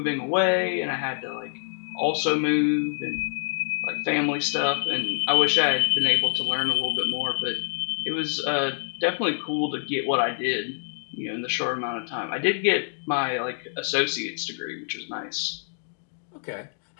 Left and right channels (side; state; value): right; silent; digital silence